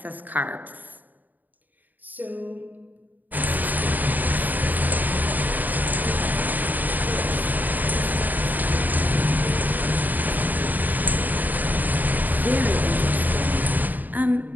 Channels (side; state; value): left; late; 0.084 ms